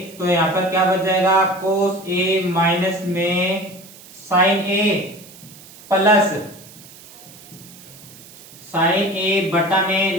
तो यहाँ पर क्या बच जाएगा, कोस ए माइनस में साइन ए प्लस साइन ए बटा में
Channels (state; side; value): noise; right; hiss, 20 dB below the sound